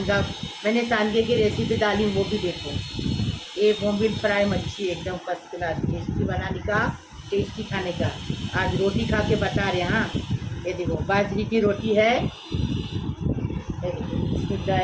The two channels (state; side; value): identical; both; correlation 1.00